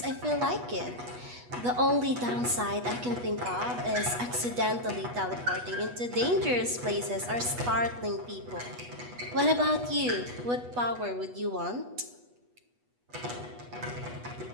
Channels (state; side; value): late; left; 8.2 ms